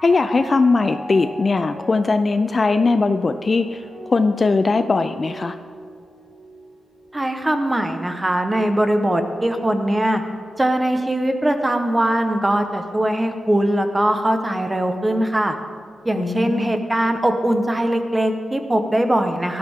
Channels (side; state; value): both; normal; correlation 0.93